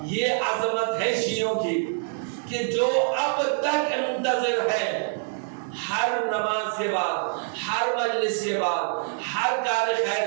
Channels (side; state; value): left; silent; 61 dB below the other